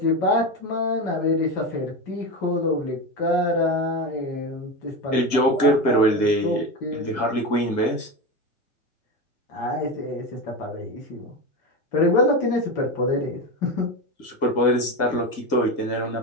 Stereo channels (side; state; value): right; late; 1.9 ms